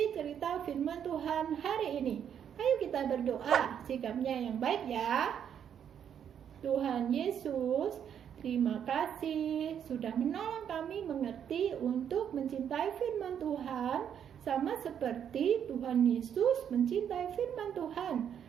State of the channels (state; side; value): quieter; left; 8.7 dB